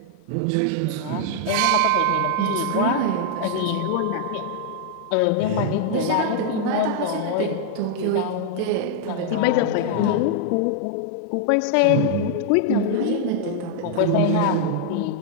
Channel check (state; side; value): different; both; correlation -0.01